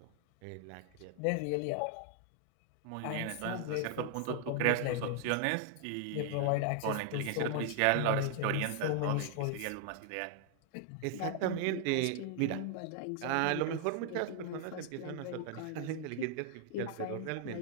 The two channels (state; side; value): different; both; correlation 0.00